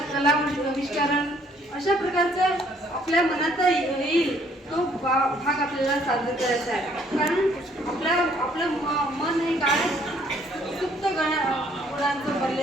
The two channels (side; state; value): both; normal; correlation 0.63